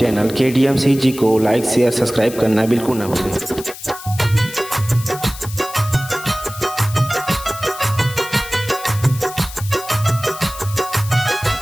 KDMCG को लाइक शेयर सब्सक्राइब करना बिल्कुल ना भूलें।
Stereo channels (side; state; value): left; noise; hiss, 14 dB below the sound